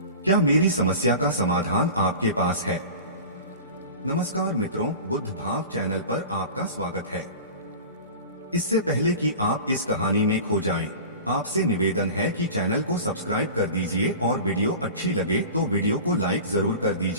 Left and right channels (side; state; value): both; inverted; correlation -0.36